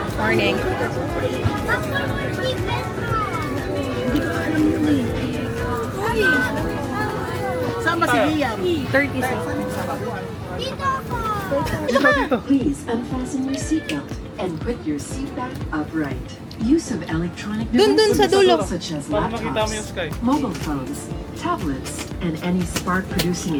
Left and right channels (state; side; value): identical; both; correlation 1.00